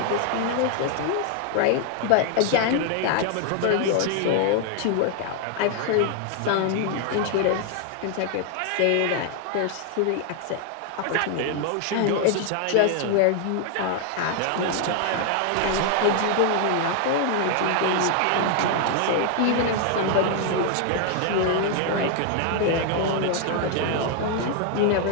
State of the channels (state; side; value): different; both; correlation 0.00